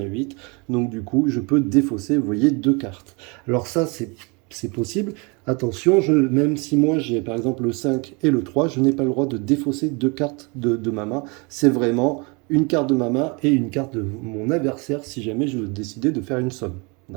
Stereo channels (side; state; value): left; quieter; 30.1 dB